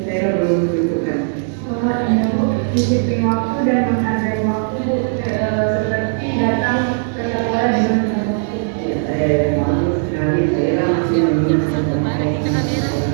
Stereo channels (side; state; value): left; silent; 56 dB below the other